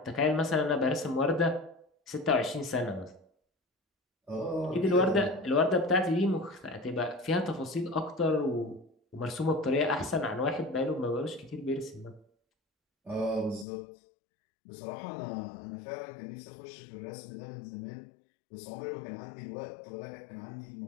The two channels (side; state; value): right; drops out; at 13.7 s